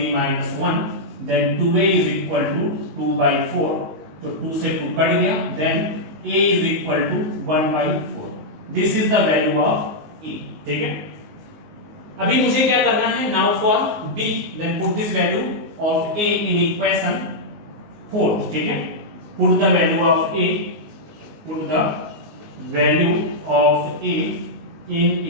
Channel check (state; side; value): late; left; 19 ms